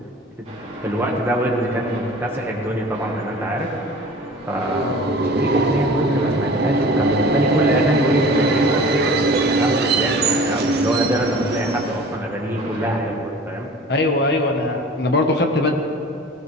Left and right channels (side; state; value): both; normal; correlation 0.42